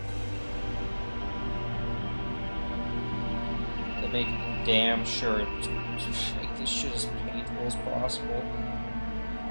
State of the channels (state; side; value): inverted; both; correlation -1.00